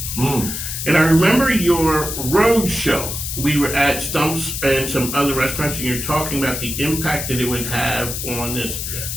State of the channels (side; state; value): left; noise; hiss, 5 dB below the sound